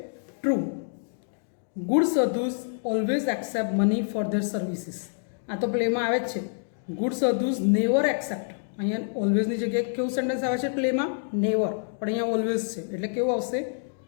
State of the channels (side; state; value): right; silent; digital silence